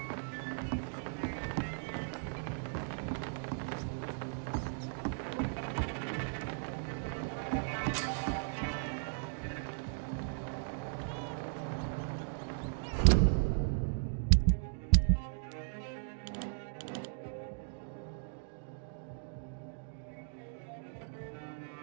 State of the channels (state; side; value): silent; left; digital silence